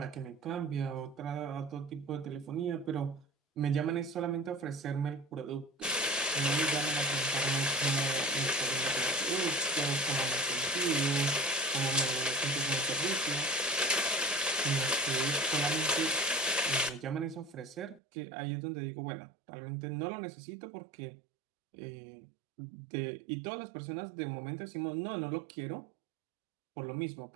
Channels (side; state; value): left; drops out; at 18.0 s